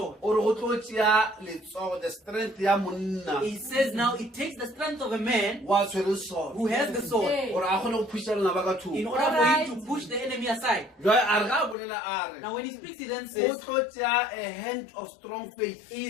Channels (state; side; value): drops out; right; at 11.8 s